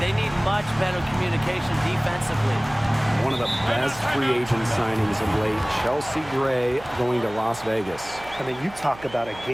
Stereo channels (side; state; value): right; noise; hum, 19 dB below the sound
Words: need much better communication defensively. One of the best free agent signings of late, Chelsea Gray going to Las Vegas. I mean, you talk about a